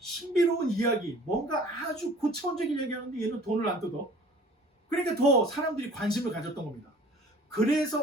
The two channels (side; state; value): both; normal; correlation 0.50